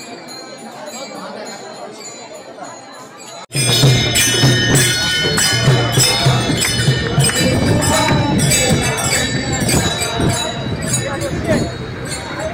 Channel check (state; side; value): identical; both; correlation 1.00